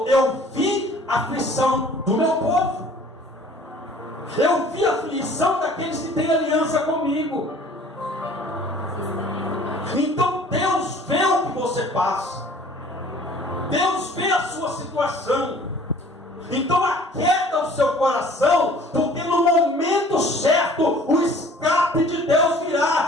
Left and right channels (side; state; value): both; normal; correlation 0.51